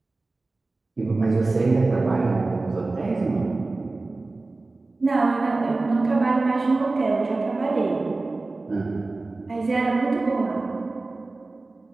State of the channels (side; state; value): left; quieter; 3.3 dB